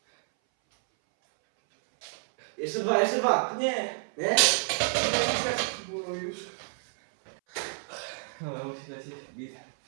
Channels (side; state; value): left; silent; 58 dB below the other